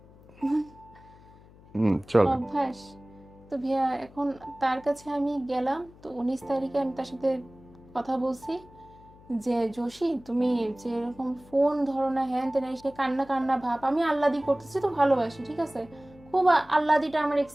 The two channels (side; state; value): left; noise; hum, 23 dB below the sound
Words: চলো। অভ্যাস। তো ভাইয়া এখন তার কাছে আমি গেলাম, তো 19 তারিখে আমি তার সাথে কথা বলছি যে জোশী তুমি যেরকম ফোন ধরো না, হ্যান তেন, সে কান্না কান্না ভাব, আমি আল্লাদি করতেছি, তো ভালোবাসি, ঠিক আছে, খুব আল্লাদিটা আমার